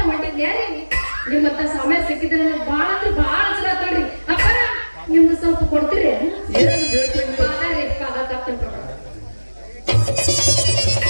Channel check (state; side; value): inverted; both; correlation -1.00